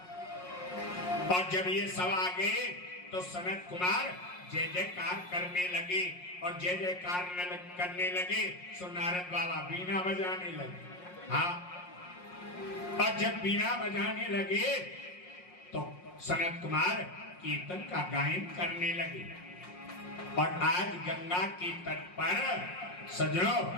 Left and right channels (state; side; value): late; right; 5.6 ms